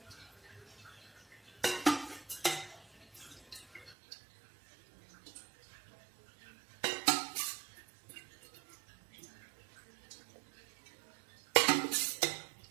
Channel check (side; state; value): left; drops out; at 4.0 s